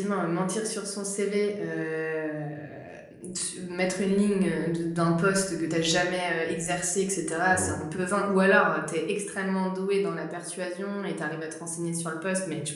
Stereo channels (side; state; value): both; identical; correlation 1.00